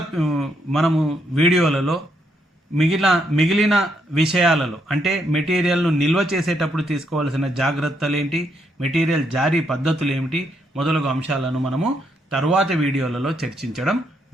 మనము వీడియోలలో మిగిలిన విషయాలలో అంటే మెటీరియల్ను నిల్వ చేసేటప్పుడు తీసుకోవాల్సిన జాగ్రత్తలు ఏంటి, మెటీరియల్ జారీ పద్ధతులు ఏమిటి మొదలగు అంశాలను మనము తరువాతి వీడియోలలో చర్చించడం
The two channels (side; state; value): both; normal; correlation 0.76